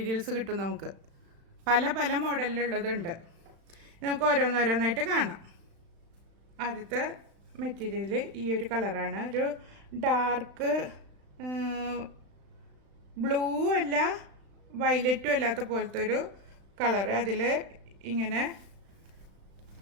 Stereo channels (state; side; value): late; left; 36 ms